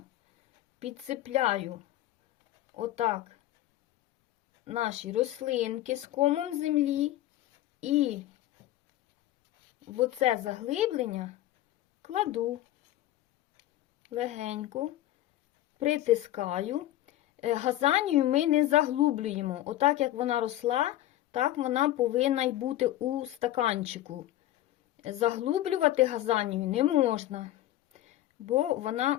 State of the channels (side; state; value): right; quieter; 14.2 dB